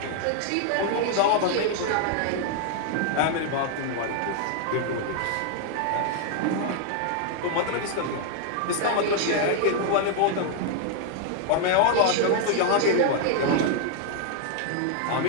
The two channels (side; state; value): both; different; correlation 0.00